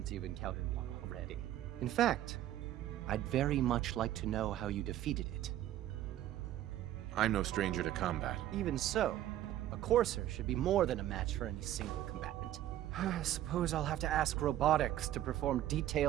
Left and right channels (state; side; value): quieter; left; 12.9 dB